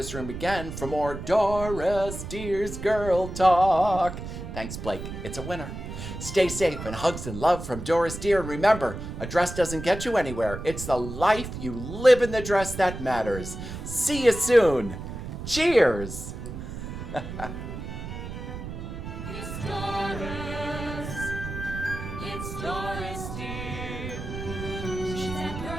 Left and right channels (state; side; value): noise; right; rumble, 8 dB below the sound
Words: Room again for more Doris Deer's Girl Talk. Thanks, Blake. It's a winner. Stay safe, and hugs and love from Doris Deer. And remember, a dress doesn't get you anywhere. It's the life you live in the dress that matters. See you soon. Cheers. It's Doris. It's Doris Deer. She's that